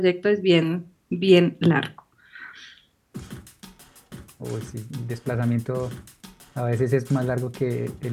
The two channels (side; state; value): both; identical; correlation 1.00